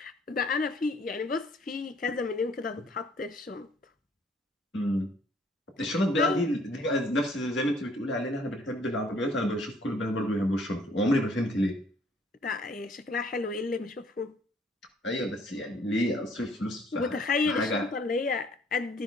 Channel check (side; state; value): both; normal; correlation 0.61